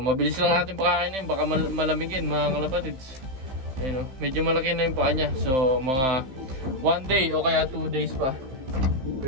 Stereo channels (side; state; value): left; late; 15 ms